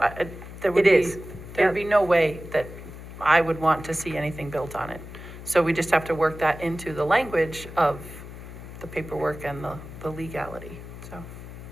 there would It be, is. there'd be no way that I would want to see anything built on it. So we just have to work that into the language of the paperwork and the legality, so.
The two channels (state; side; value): noise; left; hum, 13 dB below the sound